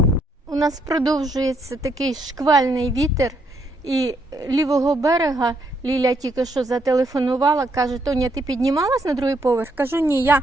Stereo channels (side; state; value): both; normal; correlation 0.74